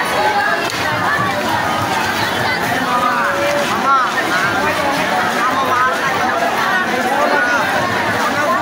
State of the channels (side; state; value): both; identical; correlation 1.00